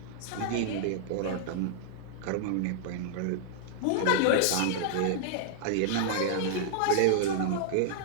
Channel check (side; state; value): both; different; correlation -0.01